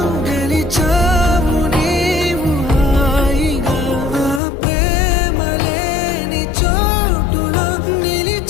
గెలిచావు నీవు హాయిగా ఆ ప్రేమ లేని చోటులో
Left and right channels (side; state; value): right; drops out; at 4.4 s